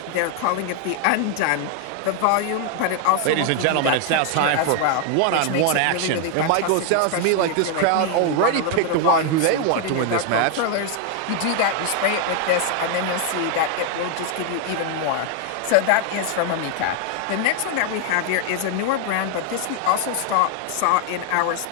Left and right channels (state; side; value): different; both; correlation 0.00